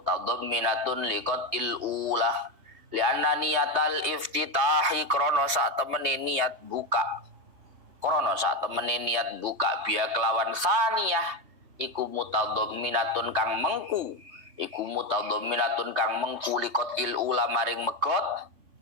liqatil ula. Li'anna niyatal iftitahi krana sak temene niat buka biha kelawan saniyah iku mutadamminatun kang mengku liqatil ula maring megot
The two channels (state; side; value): late; left; 3.2 ms